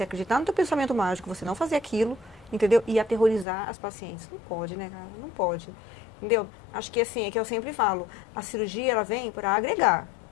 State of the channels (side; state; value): right; drops out; at 3.5 s